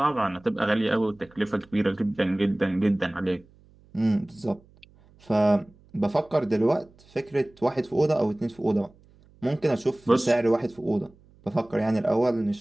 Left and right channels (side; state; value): right; noise; hum, 28 dB below the sound